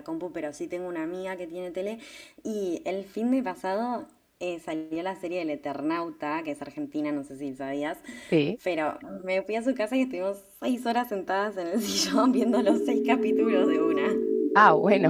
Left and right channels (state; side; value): identical; both; correlation 1.00